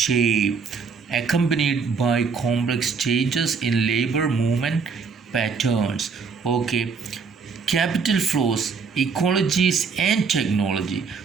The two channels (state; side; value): quieter; left; 5.3 dB